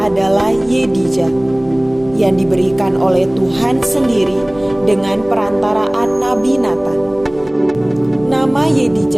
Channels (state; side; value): noise; left; hum, 22 dB below the sound